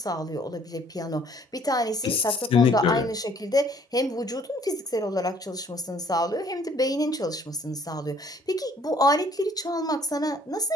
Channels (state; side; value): normal; both; correlation 0.60